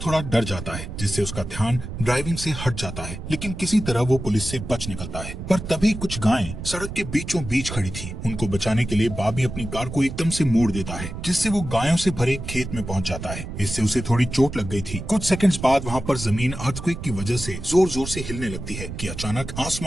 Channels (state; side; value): noise; right; rumble, 8 dB below the sound